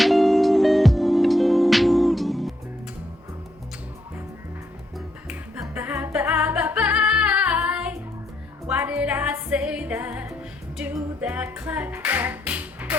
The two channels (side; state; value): both; normal; correlation 0.76